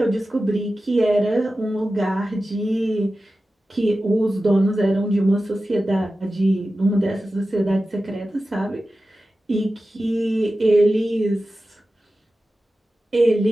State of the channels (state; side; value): normal; both; correlation 0.94